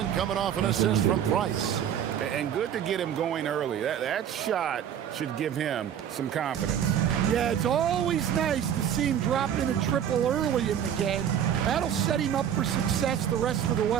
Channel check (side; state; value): left; quieter; 9.3 dB